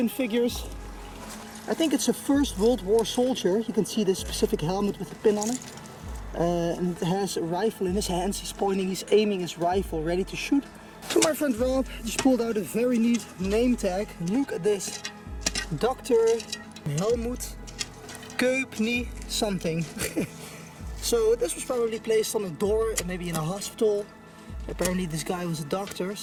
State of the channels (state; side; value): identical; both; correlation 1.00